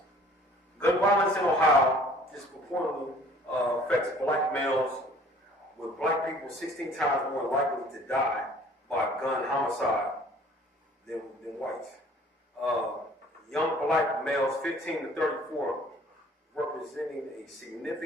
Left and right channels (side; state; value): both; normal; correlation 0.53